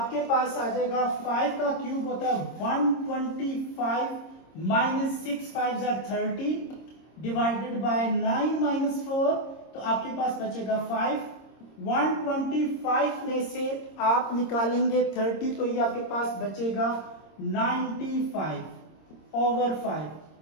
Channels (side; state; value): right; late; 26 ms